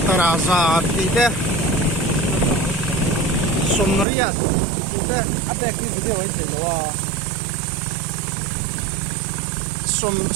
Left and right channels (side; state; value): left; drops out; at 4.0 s